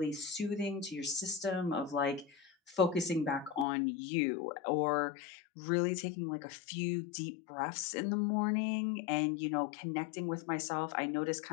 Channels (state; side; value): drops out; right; at 3.7 s